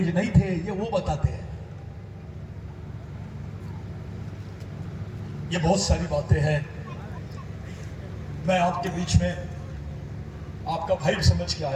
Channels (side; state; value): both; identical; correlation 1.00